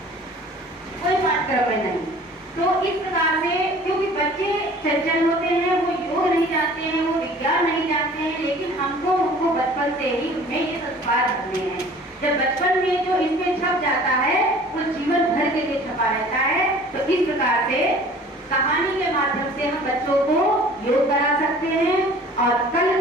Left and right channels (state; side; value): normal; both; correlation 0.48